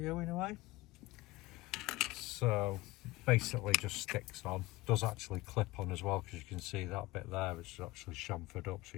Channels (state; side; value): quieter; right; 19.9 dB